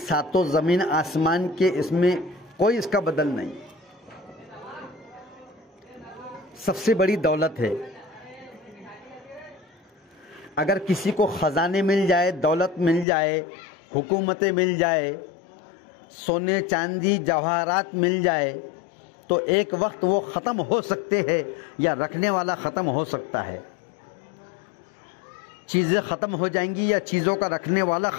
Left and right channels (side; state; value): right; drops out; at 13.1 s